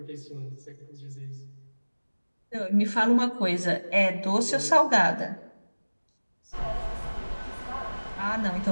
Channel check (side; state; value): both; inverted; correlation -1.00